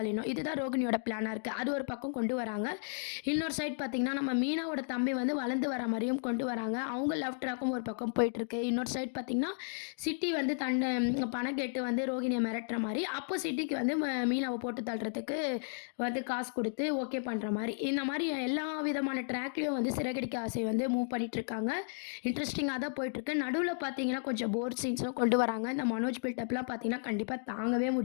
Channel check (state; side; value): silent; right; digital silence